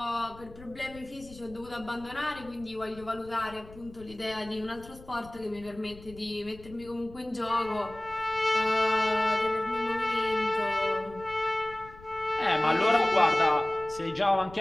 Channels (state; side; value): noise; left; rumble, 19 dB below the sound